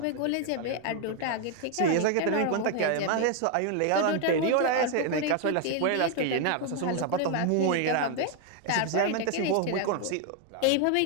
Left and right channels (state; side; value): different; both; correlation 0.01